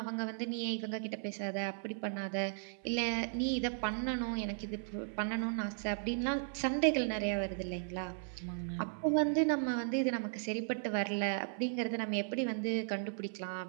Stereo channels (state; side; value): silent; left; 54 dB below the other